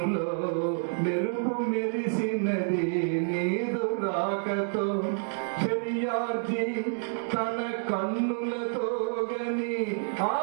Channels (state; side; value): silent; left; digital silence